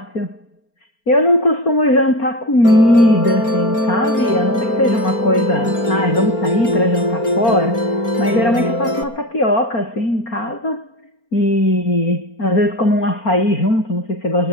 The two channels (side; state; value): right; late; 4.4 ms